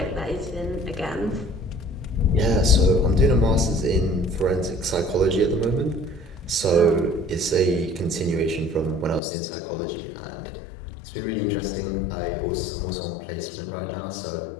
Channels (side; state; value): right; drops out; at 9.2 s